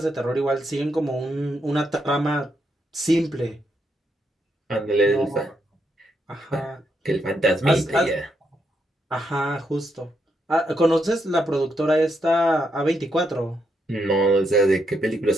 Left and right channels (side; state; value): both; normal; correlation 0.79